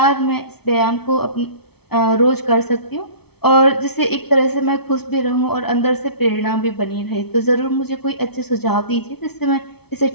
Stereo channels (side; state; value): right; late; 0.97 ms